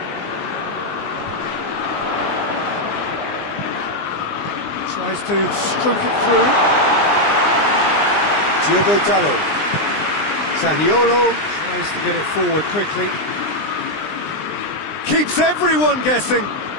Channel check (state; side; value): late; right; 20 ms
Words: Tries to stroke it through. Diogo Dalot. Zaniolo tries to get it forward quickly. Keeps everyone guessing.